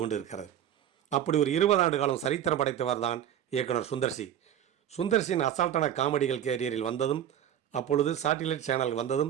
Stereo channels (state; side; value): quieter; left; 10.4 dB